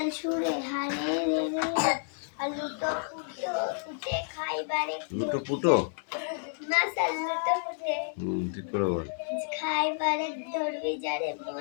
সুরে হারে রে রে আর লুটো ফুটো ফুটে খাইবারে লুটো পুটো? মাসাল লুটো ফুটে ঠিক করে বল। খাইবারে ধরবি যারে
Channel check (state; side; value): silent; right; 58 dB below the other